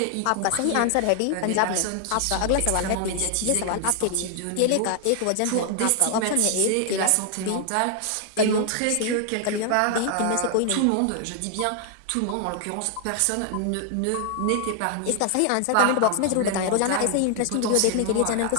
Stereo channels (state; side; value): different; both; correlation 0.00